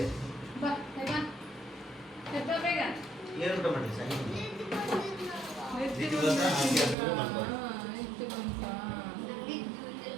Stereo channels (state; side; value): drops out; left; at 7.0 s